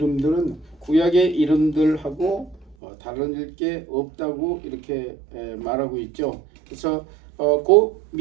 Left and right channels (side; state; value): left; drops out; at 2.8 s